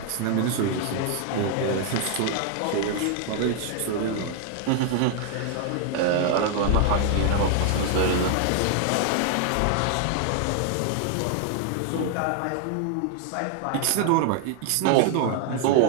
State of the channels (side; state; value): both; different; correlation 0.00